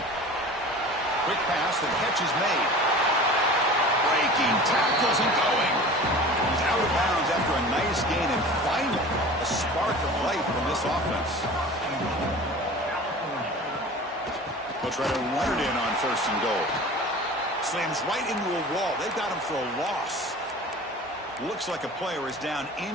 Quick pass, the catch is made. Breaking tackles and going. He's out of bounds after a nice gain, and finally a spark of light from this offense. They'll try to run it in on 1st and goal. Slams right into a wall. They've got him for a loss. Looks like a player is down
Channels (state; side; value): normal; both; correlation 0.39